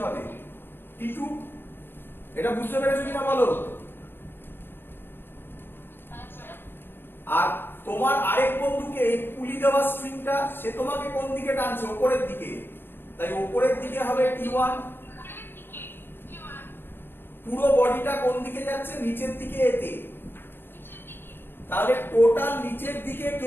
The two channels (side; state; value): right; late; 0.10 ms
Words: হবে? T2। এটা বুঝতে পেরেছো কিনা বলো? আর তোমার আরেক বন্ধুকে এই পুলি দেওয়া স্ট্রিংটা, সে তোমাকে কোন দিকে টানছে? উপরের দিকে। তাই উপরের দিকে হবে T1। পুরো বডিটা কোন দিকে যাচ্ছে? নিচের দিকে এতে। তাহলে টোটাল নিচের দিকে